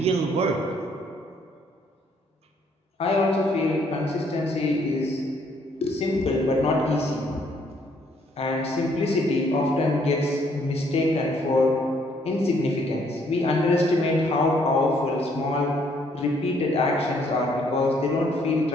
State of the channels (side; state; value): both; normal; correlation 0.67